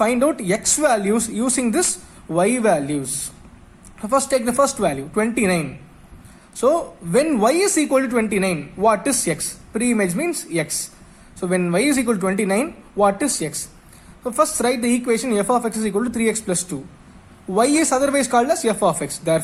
out x values using this y values. So first take the first value, 29. So, when y is equal to 29, what is x? Pre-image means x. So, when y is equal to 29, what is x? So, first write the equation f of x is equal to 3x plus 2. Y is otherwise called as f of x.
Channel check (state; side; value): identical; both; correlation 1.00